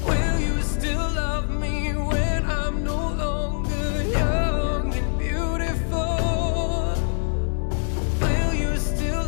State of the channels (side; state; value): right; silent; 59 dB below the other